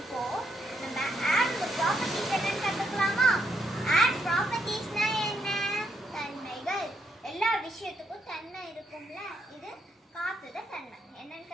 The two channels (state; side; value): normal; both; correlation 0.77